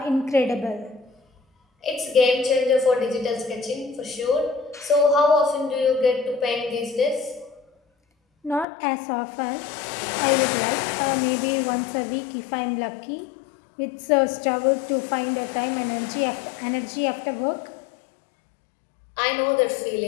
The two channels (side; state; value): right; drops out; at 8.7 s